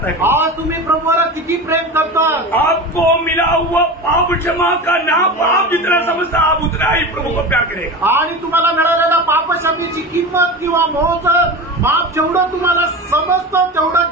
है? आज तुम्ही प्रभूवर किती प्रेम करता? आपको मिला हुआ पाप क्षमा का नाप आप जितना समझता आप उतना ही प्रभु को प्यार करेगा. आणि तुम्हाला मिळालेल्या पापक्षमेची किंमत किंवा मोज माप जेवढं तुम्हाला समजतं तेवढं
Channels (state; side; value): normal; both; correlation 0.28